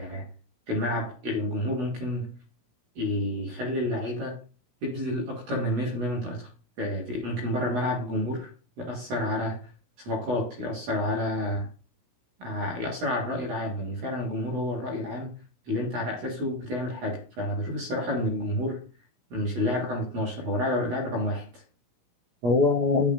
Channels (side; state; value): left; late; 16 ms